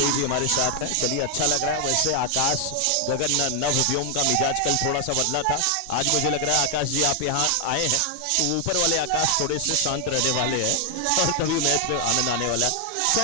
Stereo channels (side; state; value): both; different; correlation 0.00